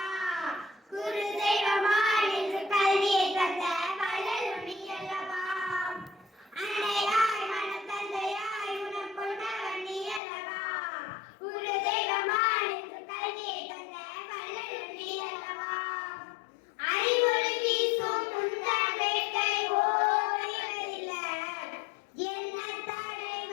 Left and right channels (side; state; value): right; drops out; at 10.2 s